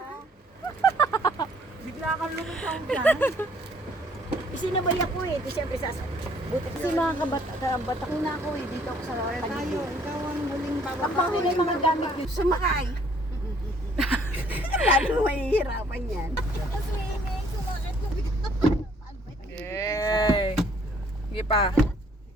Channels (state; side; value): normal; both; correlation 0.62